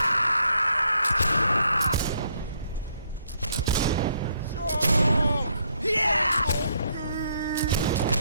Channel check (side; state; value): both; inverted; correlation -0.72